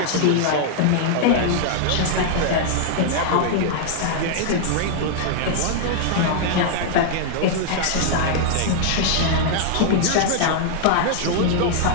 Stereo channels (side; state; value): both; different; correlation -0.01